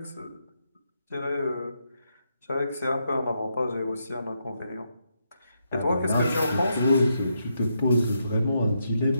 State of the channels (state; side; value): inverted; both; correlation -0.81